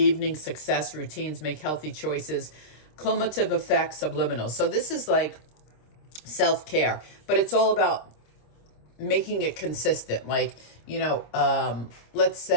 success, routines, make healthy choices, cumulative effects, subliminal. So this is like self-care, but it's all about making it consistent. Like, let's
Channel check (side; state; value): right; late; 26 ms